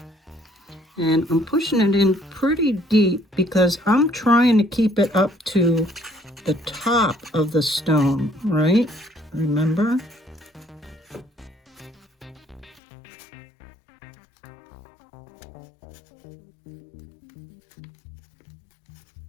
And I'm pushing it in pretty deep because I'm trying to keep it up to the top of the stone, right? Remember?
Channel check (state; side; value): drops out; right; at 12.8 s